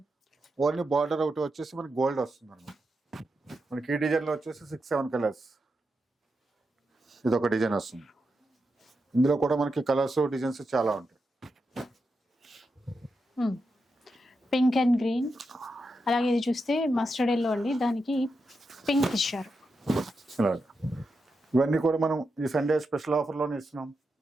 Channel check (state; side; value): normal; both; correlation 0.87